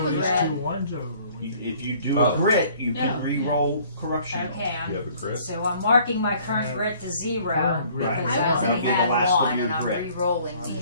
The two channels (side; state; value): both; inverted; correlation -0.56